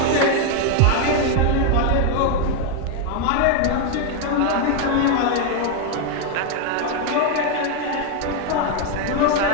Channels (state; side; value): different; both; correlation 0.01